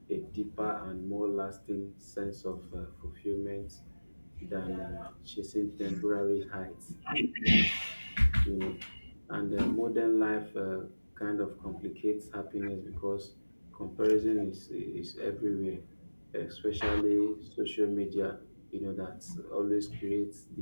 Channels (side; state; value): both; inverted; correlation -1.00